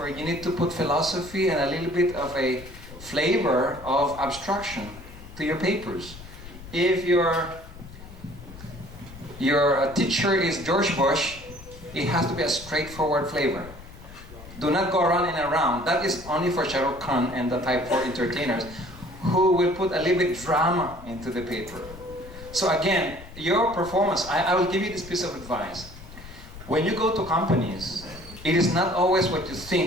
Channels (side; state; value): left; noise; rumble, 16 dB below the sound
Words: you need to put philosophy and a little bit of a flavor of abstraction to your papers. If your teacher is George Bush, it has to be a straightforward flavor. Do not go around and around. That is only for Shah Rukh Khan and the type 4 entertainers who will put a little bit drama into the paper. So again, your performance, I will give you this piece of advice. When you go to companies, it is not always what you